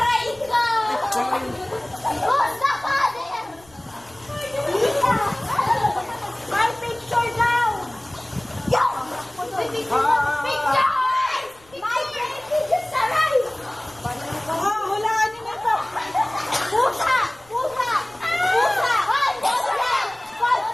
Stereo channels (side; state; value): left; noise; rumble, 29 dB below the sound